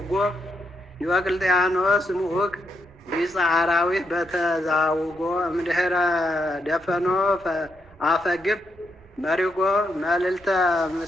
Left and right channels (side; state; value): both; normal; correlation 0.81